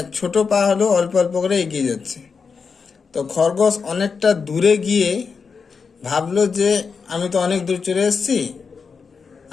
ছোট পা হলেও অল্প অল্প করে এগিয়ে যাচ্ছে। তো খরগোশ অনেকটা দূরে গিয়ে ভাবলো যে আমি তো অনেক দূর চলে এসেছি,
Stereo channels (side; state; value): right; quieter; 5.4 dB